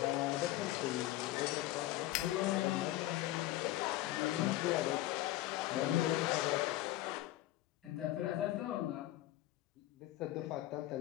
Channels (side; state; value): right; quieter; 15.7 dB